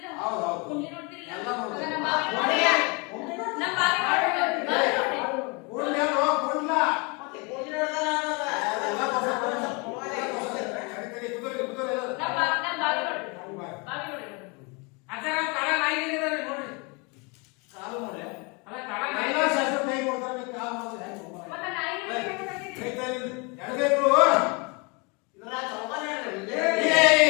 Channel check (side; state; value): right; quieter; 30.7 dB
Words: ಹೌದು, ಹೌದು. ಕುಂಡ್ಲಿ ನೋಡ್ತಿರಿಲ್ಲ? ಎಲ್ಲ ನೋಡ್ತೀವಿ. ಹಂಗಾರ ನಮ್ಮ ಬಾವಿ ನೋಡಿ. ನೋಡ್ರಿ. ನಮ್ಮ ಬಾವಿ ನೋಡ್ರಿ. ಬಾವಿ ನೋಡ್ರಿ. ಕೂಡ್ಲಿ ಅಲ್ವೋ, ಕೂಡ್ಲ. ಮತ್ತೆ ಗೋಧಿ ನೋಡ್ದಲ್ಲ ಅನ್ನೋದ. ಎಲ್ಲ ತೋರ್ಸು, ಕರಿ, ಕುದುರೆ, ಕುದುರೆ ಎಲ್ಲ. ನಮ್ಮ ಬಾವಿ ನೋಡ್ರಿ. ಬಾವಿ. ಬಾವಿ ನೋಡ್ರಿ. ಅಜ್ಜರ ಕಾಲ ನಾಯಿಗಳಿದಾವೆ ನೋಡ್ರಿ. ಕಾಲು ನೋಡಿ. ಅಲ್ಲ ಕಾಲ ಎಲ್ಲ ಶಾಸ್ತ್ರ ಕೈ ಕೊಡ್ತಾರೆ, ನೀವು ಕಾಲು ಮಾಡಿದ್ರೆ ಹೆಂಗೆ ಹೋಗೋಣ? ಮತ್ತೆ ನಾಯಿ ಕೈ ತಾಯಿಲಿಂದ ಎಡಗೈಗಳು. ಇದ್ರಾಗ ಚೌಕಾನೆ ಹೇಳ್ರಿ ಇದು.